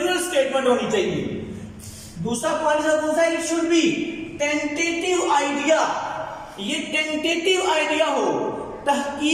स्टेटमेंट होनी चाहिए। दूसरा पॉइंट कौन सा? It should B tentative idea, ये टेंटेटिव आइडिया हो,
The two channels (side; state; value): both; identical; correlation 1.00